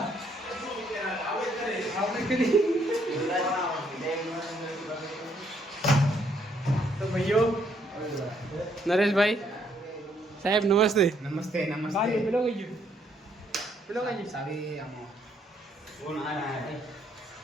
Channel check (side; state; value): both; normal; correlation 0.70